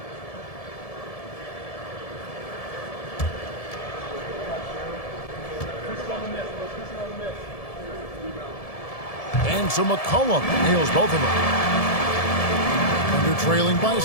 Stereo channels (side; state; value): right; late; 1.7 ms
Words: And so McCollum nails both of them. Thunder trailing by